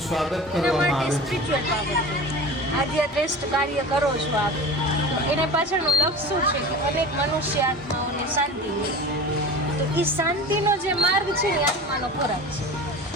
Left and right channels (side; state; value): both; normal; correlation 0.34